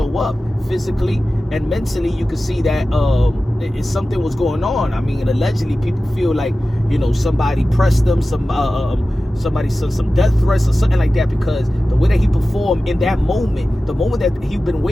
up. Physically and mentally, you could see that something was going on. I mean, allegedly, people feel like, you know, somebody pressed them, somebody sent some death threats or something like that, because the way that he performed in that moment, the moment that he'd been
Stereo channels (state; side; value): normal; both; correlation 0.95